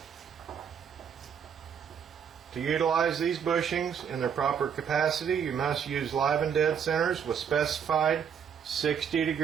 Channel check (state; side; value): quieter; left; 7.7 dB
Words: To utilize these bushings in their proper capacity, you must use live and dead centers with specified